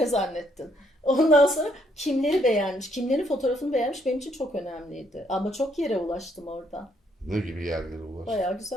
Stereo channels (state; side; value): normal; both; correlation 0.71